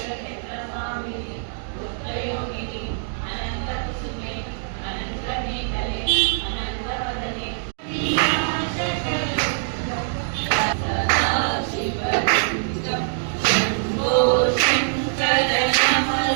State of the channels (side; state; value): left; silent; digital silence